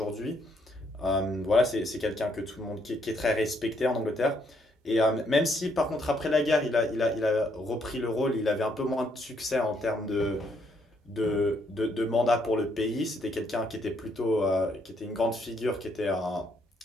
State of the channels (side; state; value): both; normal; correlation 0.71